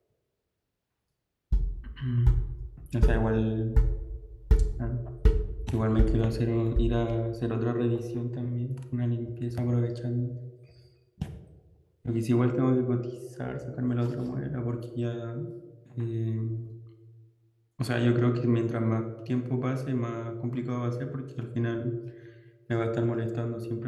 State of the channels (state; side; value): identical; both; correlation 1.00